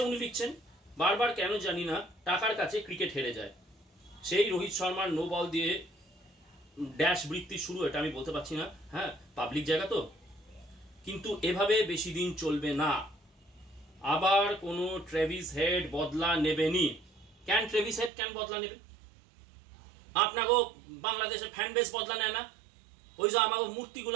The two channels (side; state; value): left; drops out; at 18.1 s